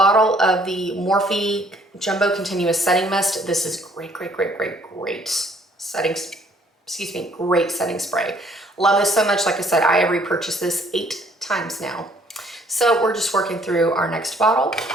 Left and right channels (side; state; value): both; normal; correlation 0.62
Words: of the Morphe Jumbo Continuous Setting Mist. This is great setting, great setting spray. Love this so much. Like I said, I have repurchased this 8 times now. So we're just working through our next bottle.